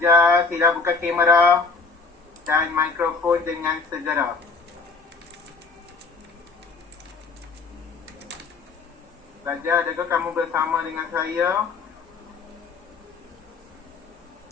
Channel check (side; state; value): right; quieter; 4.4 dB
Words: sila buka kamera dan mikrofon dengan segera. Pelajar, adakah kamu bersama dengan saya?